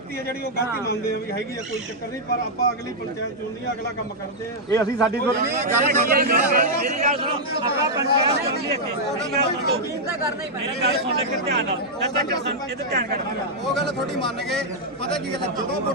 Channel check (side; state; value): both; normal; correlation -0.05